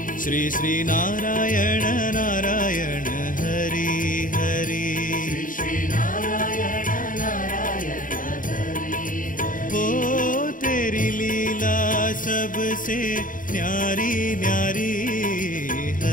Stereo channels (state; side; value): late; right; 0.39 ms